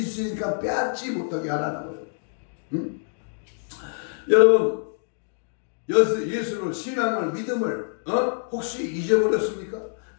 빼앗지 못하게 하라는 거예요. 응? 여러분, 예수를, 신앙을, 믿음을 혹시 잊어버렸습니까?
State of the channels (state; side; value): silent; right; digital silence